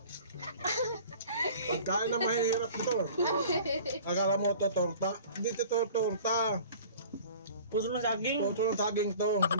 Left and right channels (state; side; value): inverted; both; correlation -0.46